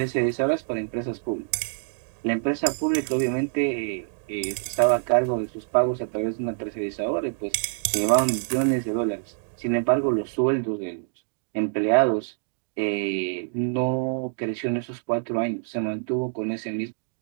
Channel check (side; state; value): left; silent; digital silence